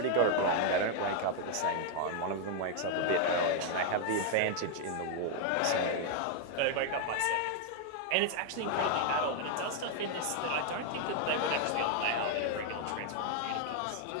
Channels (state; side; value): different; both; correlation 0.00